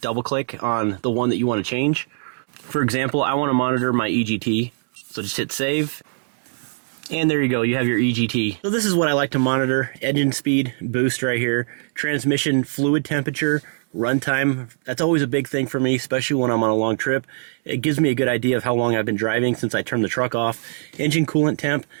double click on the one that you want to change. For example, I want to monitor my EGT, so just hit save. And there you go, you have your EGT. So this is what I like to monitor: engine speed, boost right here, transmission fluid temperature, runtime. That's always a big thing for me, especially when I'm on a long trip. It gives me a good idea of how long I've been driving since I turned the truck off. Engine coolant temp,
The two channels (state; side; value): silent; left; digital silence